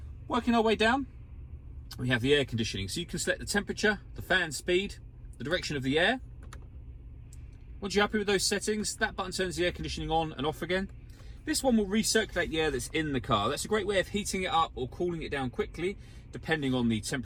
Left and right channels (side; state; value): both; identical; correlation 1.00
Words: Working our way down, we have the air conditioning. So you can select the temperature, the fan speed, the direction of the air. Once you're happy with those settings, that button turns the air conditioning on and off again. This one will recirculate the air that's in the car. That's a great way of heating it up or cooling it down quickly, depending on the